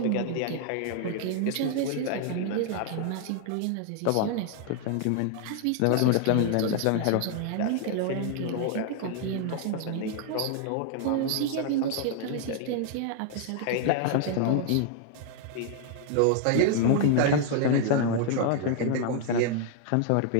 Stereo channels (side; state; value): both; different; correlation 0.00